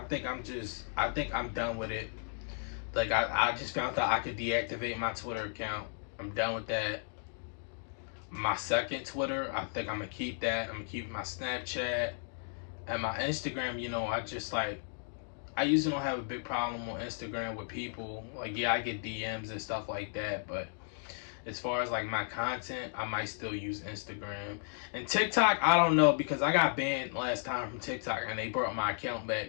think I'm done with it. Like, I just found out I could deactivate my Twitter account. I'm done with that. My second Twitter, I think I'm gonna keep that. I'm gonna keep my Snapchat and my Instagram. You know, I usually don't have a big problem on Instagram with people. Like, yeah, I get DMs and stuff like that, but as far as like my content, I might still use Instagram. And TikTok, I don't know, because I got banned last time from TikTok and they brought my account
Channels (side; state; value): right; silent; digital silence